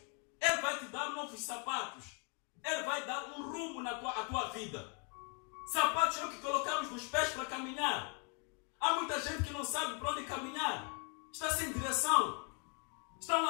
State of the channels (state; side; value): quieter; right; 37.2 dB